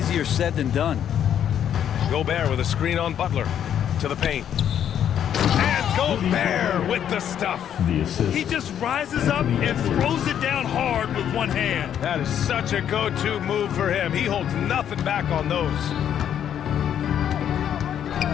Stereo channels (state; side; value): quieter; right; 9.6 dB